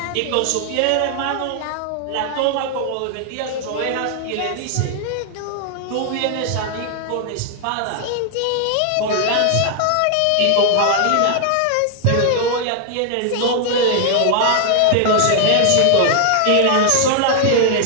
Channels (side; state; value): both; different; correlation 0.00